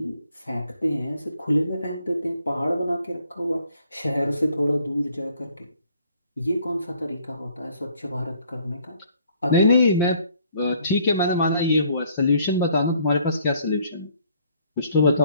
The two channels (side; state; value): both; inverted; correlation -0.63